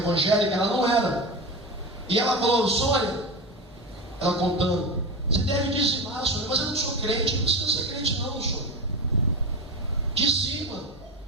ela não era. E ela falou, Sônia, ela contando, Você deve dizimar, Sônia. Mas eu não sou crente. Não precisa ser crente não, Sônia. Dizima.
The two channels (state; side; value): normal; both; correlation 0.23